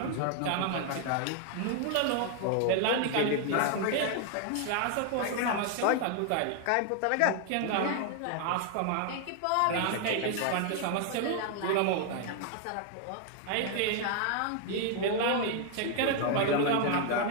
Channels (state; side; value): different; both; correlation 0.00